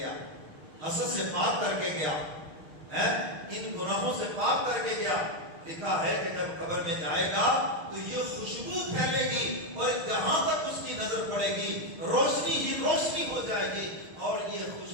حسد سے پاک کر کے گیا، ان گناہوں سے پاک کر کے گیا، لکھا ہے کہ جب قبر میں جائے گا تو یہ خوشبو پھیلے گی اور جہاں تک اس کی نظر پڑے گی روشنی ہی روشنی ہو جائے گی، اور یہ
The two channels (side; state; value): left; late; 6.5 ms